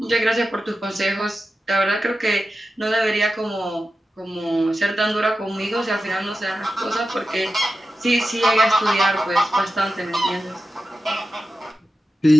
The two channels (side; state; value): both; normal; correlation 0.92